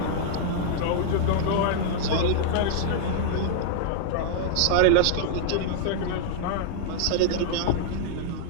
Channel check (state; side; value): different; both; correlation -0.01